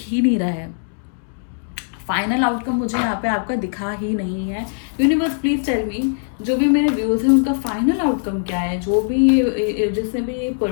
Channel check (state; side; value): silent; right; digital silence